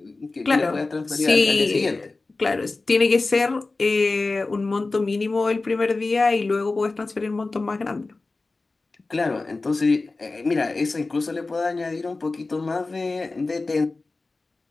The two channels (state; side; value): quieter; right; 3.5 dB